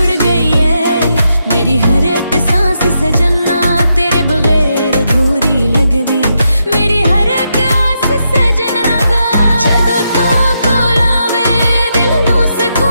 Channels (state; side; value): inverted; both; correlation -0.83